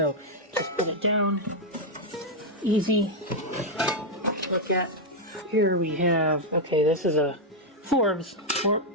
just put it down. Easy. Look at. Here we have, okay, this is a Forbes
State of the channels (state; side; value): normal; both; correlation -0.01